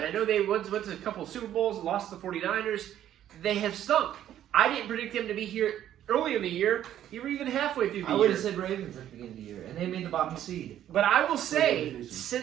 I know they went to a couple of Super Bowls, lost to the 49ers. They have stunk. I didn't predict them to be here early in the year, you were even halfway through the I year. would have said Ravens at the beginning of the year, and they made the bottom seed. But I will say,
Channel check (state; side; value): quieter; left; 11.4 dB